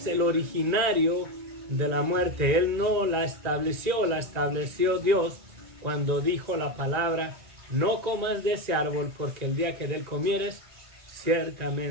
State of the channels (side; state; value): left; late; 1.9 ms